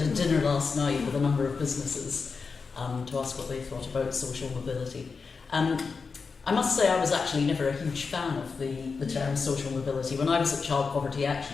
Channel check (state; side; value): quieter; right; 4.9 dB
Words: a dinner last night with a number of businesses to ask what they thought about social mobility. I must say I was actually never a huge fan of the term social mobility. When I was at Child Poverty